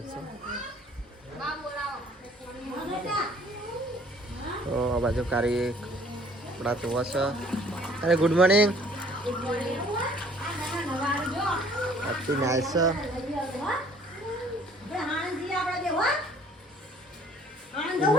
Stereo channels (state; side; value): normal; both; correlation 0.56